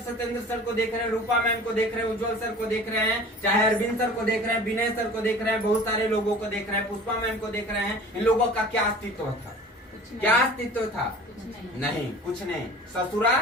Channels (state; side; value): normal; both; correlation 0.43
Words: सर को देख रहे हैं, रूपा मैम को देख रहे हैं, उज्जवल सर को देख रहे हैं, चाहे अरविंद सर को देख रहे हैं, विनय सर को देख रहे हैं, बहुत सारे लोगों को देख रहे हैं, पुष्पा मैम को देख रहे हैं। इन लोगों का क्या अस्तित्व था? क्या अस्तित्व था? नहीं, कुछ नहीं, ससुरा